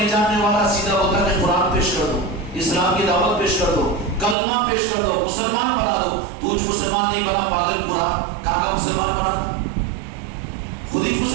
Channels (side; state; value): left; drops out; at 4.4 s